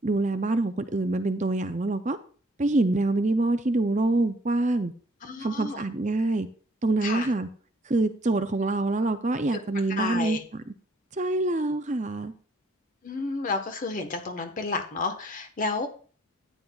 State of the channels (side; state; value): both; normal; correlation 0.63